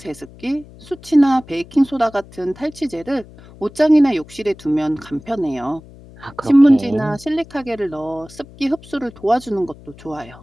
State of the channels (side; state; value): left; noise; hum, 21 dB below the sound